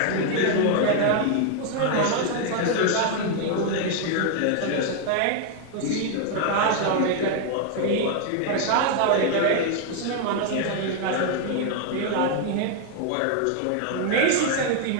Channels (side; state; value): both; different; correlation 0.00